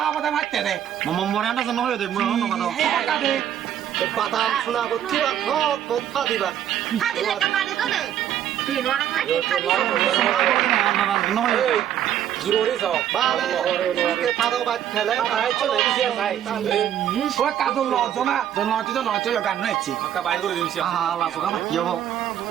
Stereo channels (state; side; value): quieter; left; 10.5 dB